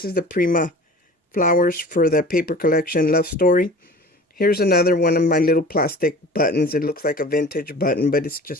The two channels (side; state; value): both; normal; correlation 0.41